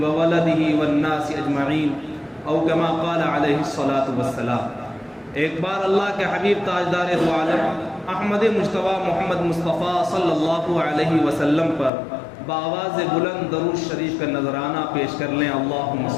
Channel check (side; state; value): right; drops out; at 11.9 s